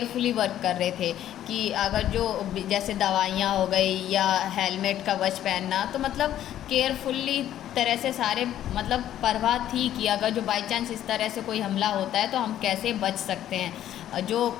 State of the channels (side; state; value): right; quieter; 11.8 dB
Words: वर्क कर रहे थे कि अगर जो जैसे दवाइयाँ हो गई या हेलमेट कवच पहनना, तो मतलब केयरफुल्ली तरह से सारे मतलब परवाह थी कि अगर जो बाई चांस इस तरह से कोई हमला होता है तो हम कैसे बच सकते हैं। जो